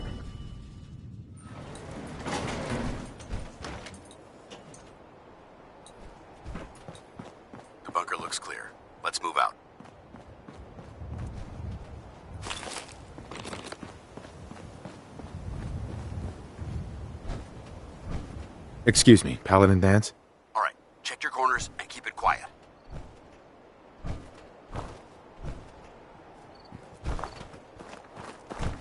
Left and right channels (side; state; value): both; identical; correlation 1.00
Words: The bunker looks clear. Let's move out. Excuse me, Paladin Dance? All right, check your corners and keep it quiet.